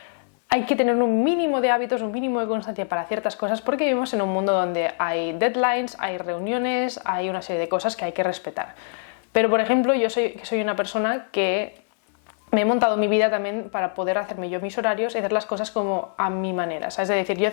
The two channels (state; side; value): silent; right; 63 dB below the other